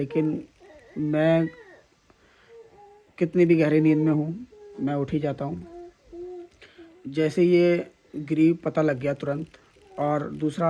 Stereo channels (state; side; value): identical; both; correlation 1.00